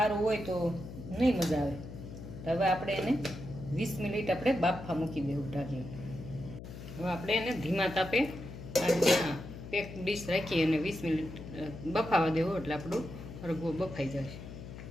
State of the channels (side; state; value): left; noise; hum, 12 dB below the sound